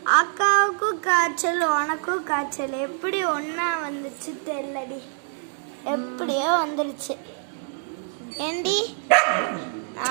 அக்காவுக்கும் காய்ச்சல் உனக்கும் காய்ச்சல் எப்படி ஒன்னா வந்துச்சு தெரியலடி எப்படியோ வந்துருச்சு ஏண்டி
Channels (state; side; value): silent; left; 62 dB below the other